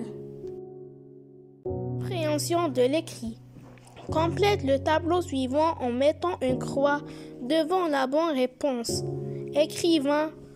Compréhension de l'écrit. Complète le tableau suivant en mettant une croix devant la bonne réponse. Écrivain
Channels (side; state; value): both; identical; correlation 1.00